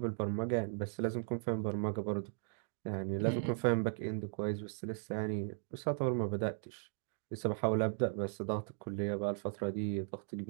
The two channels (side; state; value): left; silent; digital silence